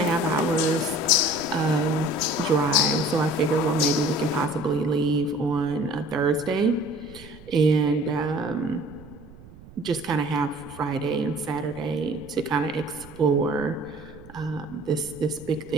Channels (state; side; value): noise; right; rumble, 20 dB below the sound